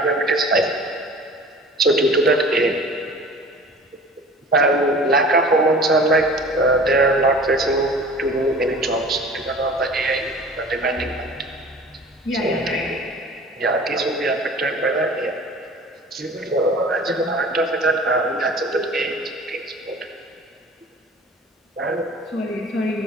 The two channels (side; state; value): both; normal; correlation 0.43